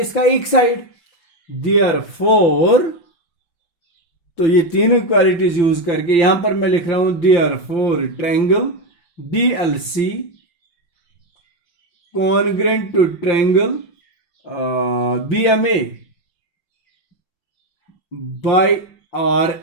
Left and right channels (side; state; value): right; late; 5.8 ms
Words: इसका एक साइड, देयरफॉर। तो ये तीन इक्वालिटीज यूज करके यहां पर मैं लिख रहा हूं therefore triangle DLC congruent to triangle BMA by